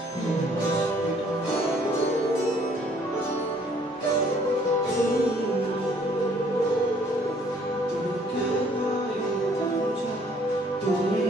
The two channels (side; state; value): both; normal; correlation 0.61